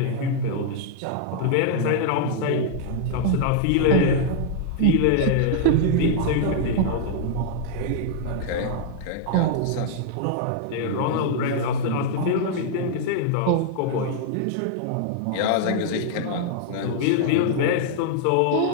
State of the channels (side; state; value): both; different; correlation -0.01